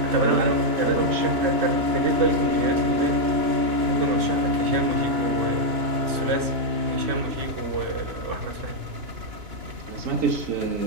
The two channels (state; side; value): late; left; 2.9 ms